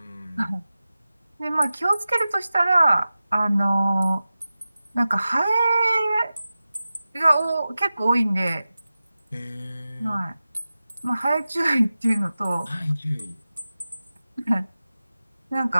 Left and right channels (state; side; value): inverted; both; correlation -0.95